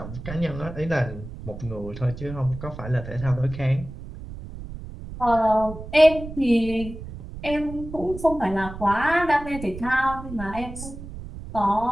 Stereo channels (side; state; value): right; noise; rumble, 11 dB below the sound